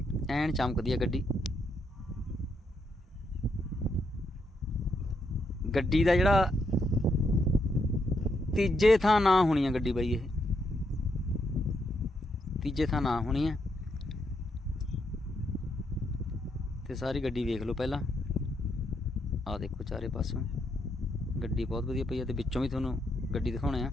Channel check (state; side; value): normal; both; correlation 0.78